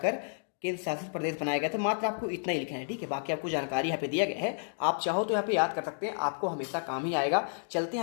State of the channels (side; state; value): right; silent; digital silence